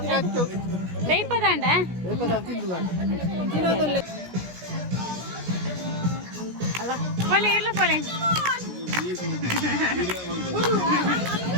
ಅಚ್ಚು ಬೇಯ್ಪದ ಅಂಡ ಅಲ್ಲ ಪೊಲೆ ಇಲ್ಲ ಪೊಲೆ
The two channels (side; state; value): left; late; 17 ms